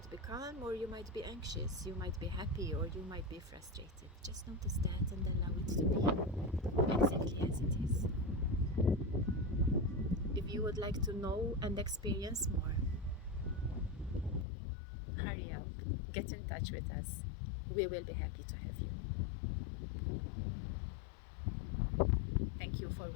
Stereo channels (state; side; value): drops out; right; at 14.5 s